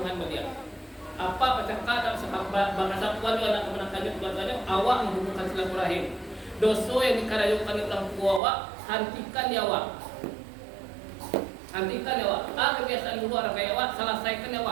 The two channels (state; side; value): drops out; left; at 8.4 s